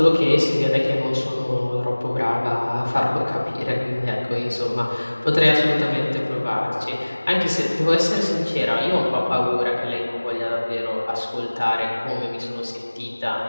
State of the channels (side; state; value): both; inverted; correlation -1.00